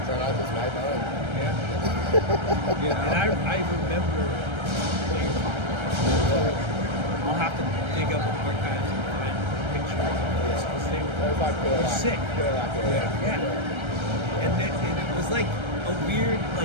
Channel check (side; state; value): left; late; 1.3 ms